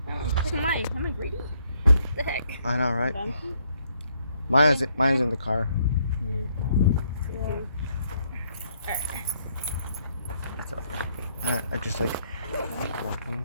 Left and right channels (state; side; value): inverted; both; correlation -0.70